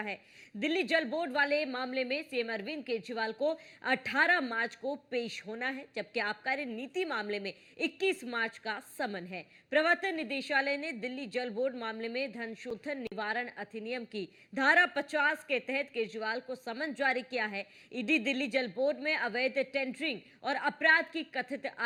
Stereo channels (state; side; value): identical; both; correlation 1.00